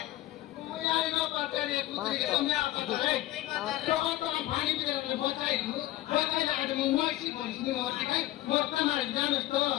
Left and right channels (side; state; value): right; quieter; 15.8 dB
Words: মুই আই না পাটারি একুত্রি কে তুমি আর পাটারে তখন তো পানি দিলে বচাইলু বচাইলা আজ মুই মইস্তি বলিনি মরতে কাই মরতে মারি জানোস তো